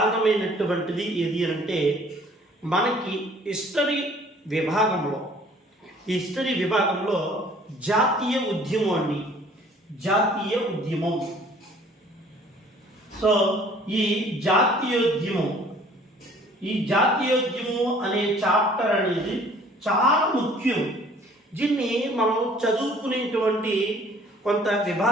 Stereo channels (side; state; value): both; normal; correlation 0.54